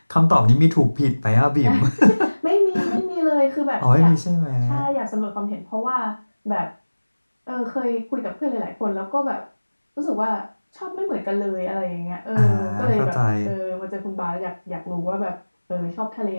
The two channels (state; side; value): inverted; both; correlation -1.00